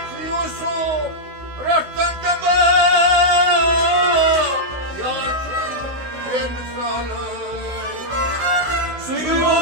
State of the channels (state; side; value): late; left; 16 ms